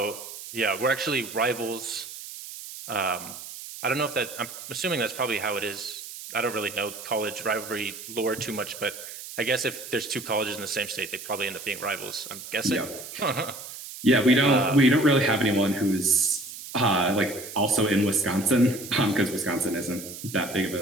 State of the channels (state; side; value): noise; right; hiss, 12 dB below the sound